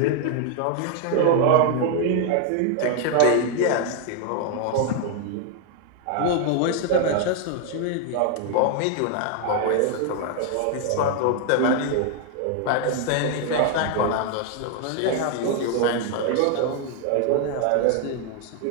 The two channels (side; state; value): both; different; correlation 0.00